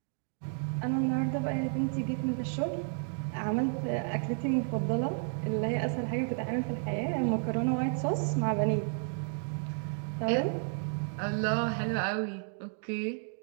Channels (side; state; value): left; silent; 57 dB below the other